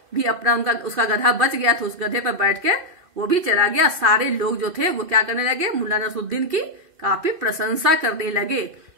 भी अपना उसका गधा बच गया था, उस गधे पर बैठ के वो भी चला गया। सारे लोग जो थे वो क्या करने लगे, मुल्ला नसरुद्दीन की काफी प्रशंसा करने लगे।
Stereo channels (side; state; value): left; late; 2.5 ms